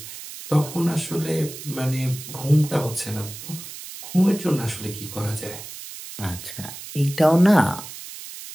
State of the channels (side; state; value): right; noise; hiss, 12 dB below the sound